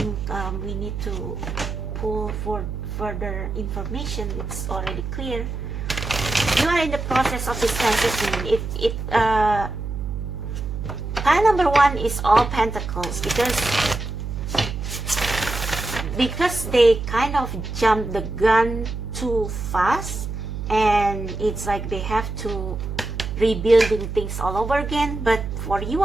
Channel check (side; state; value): right; noise; hum, 5 dB below the sound